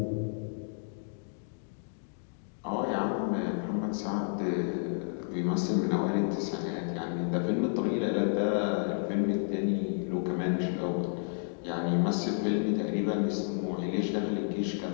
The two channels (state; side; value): silent; right; digital silence